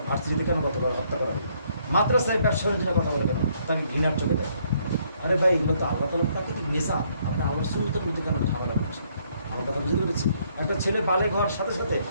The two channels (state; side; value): inverted; both; correlation -0.69